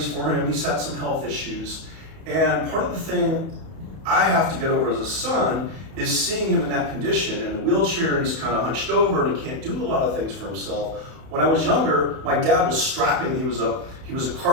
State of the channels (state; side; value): late; left; 31 ms